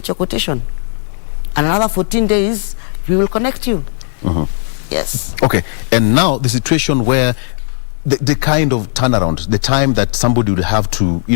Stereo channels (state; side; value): silent; right; digital silence